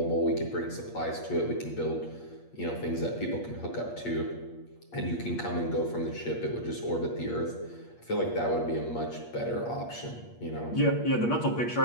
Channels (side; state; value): right; late; 8.5 ms